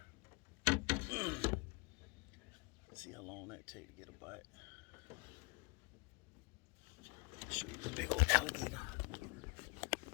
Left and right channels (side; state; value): right; quieter; 28.8 dB